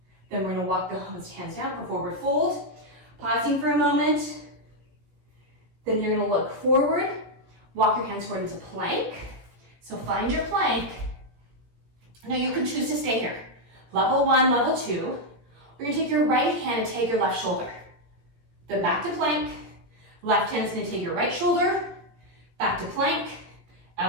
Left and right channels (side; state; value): left; late; 17 ms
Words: Then we're going to walk the hands down for forward fold. Pausing for a moment. Then you're going to look forward. Walk your hands forward into plank. So find your plank. Now you can choose to stay here. Level 1, level 2. We're going to take your right hand and take your left shoulder. Then back to plank. Left hand is going to take your right shoulder. Back to plank.